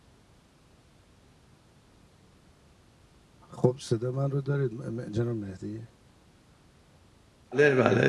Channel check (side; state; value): both; identical; correlation 1.00